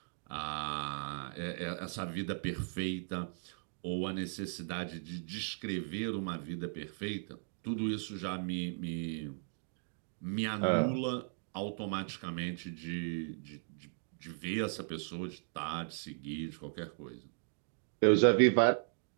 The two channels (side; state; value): left; silent; digital silence